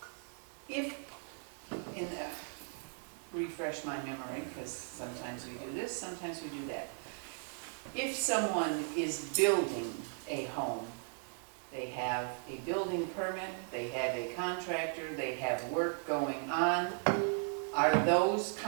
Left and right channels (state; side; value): silent; left; 53 dB below the other